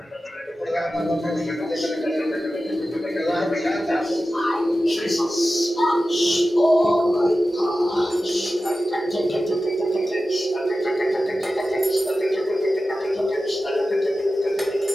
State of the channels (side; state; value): both; normal; correlation 0.94